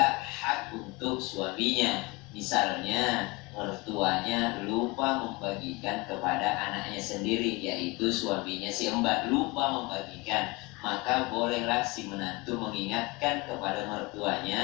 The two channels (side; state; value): right; quieter; 25.1 dB